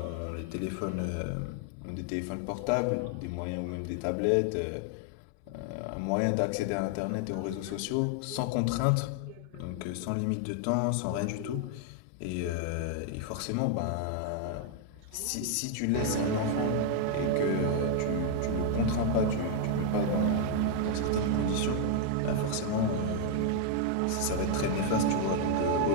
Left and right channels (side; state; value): both; different; correlation 0.00